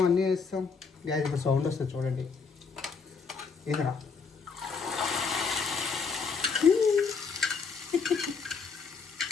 అన్నీ వేస్తాం గ్యాస్ ఇప్పుడు సౌండ్ వస్తుంది చూడండి ఏదరా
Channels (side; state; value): right; quieter; 5.2 dB